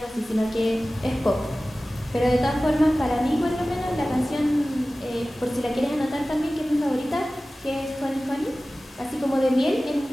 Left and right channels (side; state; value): both; normal; correlation 0.96